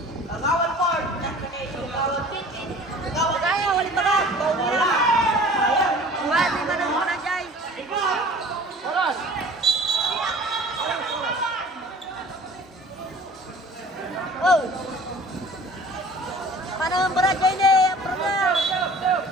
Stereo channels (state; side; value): normal; both; correlation 0.46